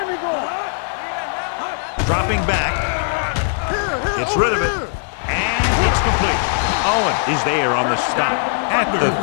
we go. Dropping back. Gets rid of it. And it's complete. Owen is there on the stop at the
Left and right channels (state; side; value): silent; right; digital silence